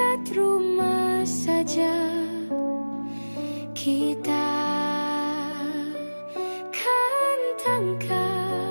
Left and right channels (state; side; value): inverted; both; correlation -1.00